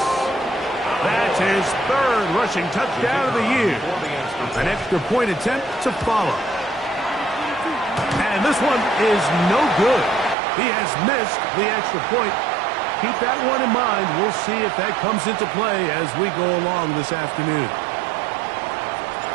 That's his 3rd rushing touchdown of the year. An extra point attempt to follow. And this one is no good. He has missed the extra point. Keep that one in mind. We'll see if that comes into play as we go along this afternoon.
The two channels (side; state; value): left; drops out; at 10.4 s